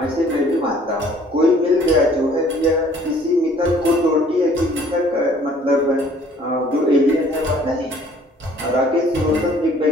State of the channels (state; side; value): normal; both; correlation 0.56